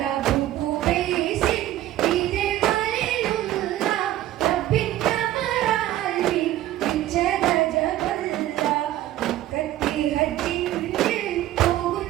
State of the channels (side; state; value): left; quieter; 14.0 dB